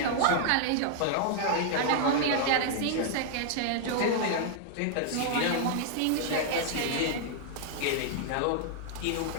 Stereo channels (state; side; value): different; both; correlation -0.01